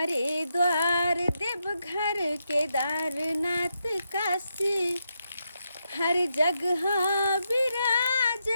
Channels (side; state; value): both; inverted; correlation -0.83